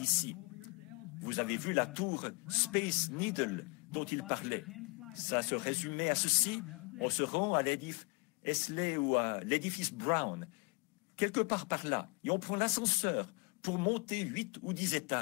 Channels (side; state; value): right; quieter; 30.6 dB